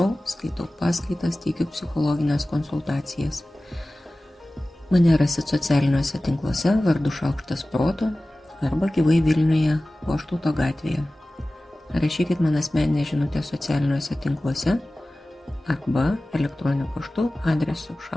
skaitau paskaitas, teikiu psichologinės konsultacijas. Mane rasit socialiniuose tinkluose vardu Šaukštas proto arba gyvai Vilniuje Goštauto gatvėje. Rašykit man asmeninę žinutę socialiniuose tinkluose arba elektroniniu paštu adresu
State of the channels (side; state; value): both; normal; correlation 0.97